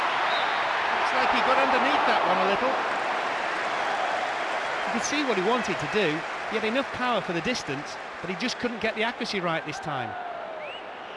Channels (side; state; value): both; identical; correlation 1.00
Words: Looks like he got underneath that one a little. You could see what he wanted to do. He had enough power for the distance, but he just couldn't get the accuracy right this time.